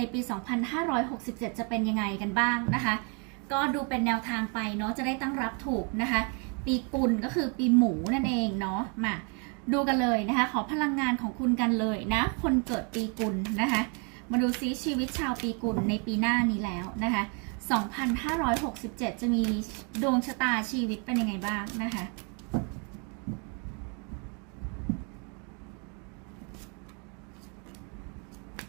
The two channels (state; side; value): quieter; left; 35.8 dB